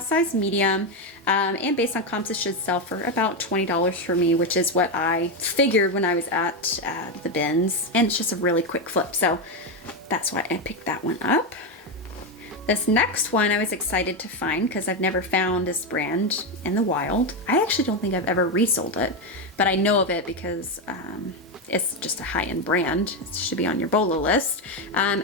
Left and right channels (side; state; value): both; normal; correlation 0.09